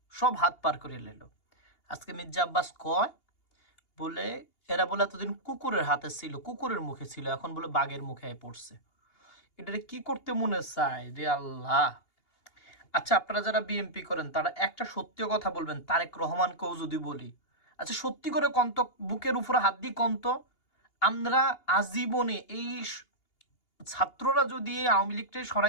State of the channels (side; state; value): right; late; 2.8 ms